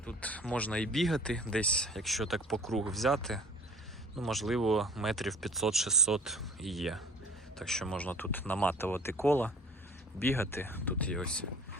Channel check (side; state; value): both; normal; correlation 0.48